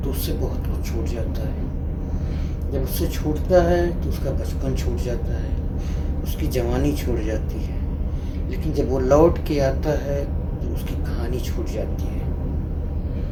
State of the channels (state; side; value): identical; both; correlation 1.00